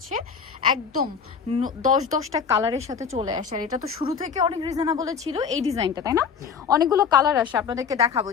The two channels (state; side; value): quieter; right; 6.4 dB